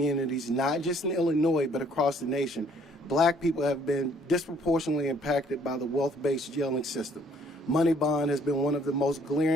not just in Illinois, but across the nation, Black people have been disproportionately impacted by the wealth-based jailing system. Money bond has been one of the most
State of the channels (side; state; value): both; normal; correlation 0.61